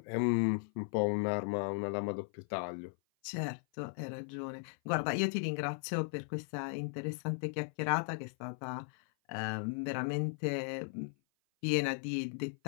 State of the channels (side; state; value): right; silent; 53 dB below the other